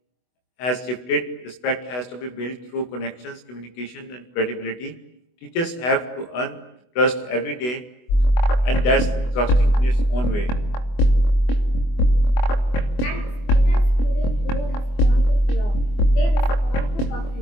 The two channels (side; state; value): right; late; 24 ms